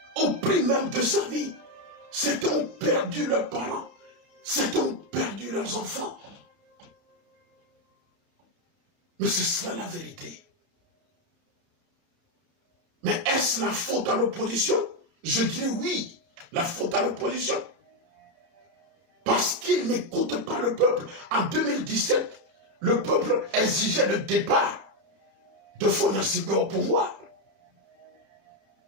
Au prix même de sa vie. Certains ont perdu leurs parents. Certains ont perdu leurs enfants. Mais c'est cela la vérité. Mais est-ce la faute à l'opposition? Je dirais oui, la faute à l'opposition. Parce qu'ils n'écoutent pas le peuple. En 2017, le peuple exigeait le départ de Fonasibé au pouvoir.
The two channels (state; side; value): late; left; 30 ms